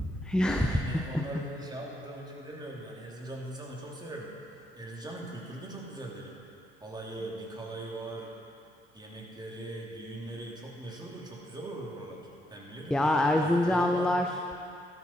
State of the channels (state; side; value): normal; both; correlation 0.78